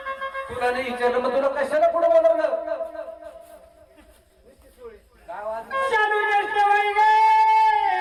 तुला नाही विचारलं मग तुला कशाला पुढे बोलवलं काय वाजलं? शालू नेसते वय गे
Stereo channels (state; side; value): identical; both; correlation 1.00